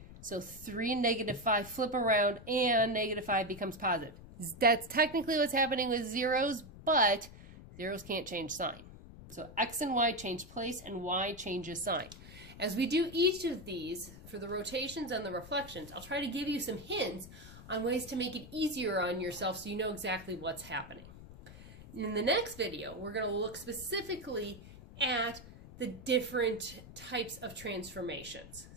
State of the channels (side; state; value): left; noise; rumble, 17 dB below the sound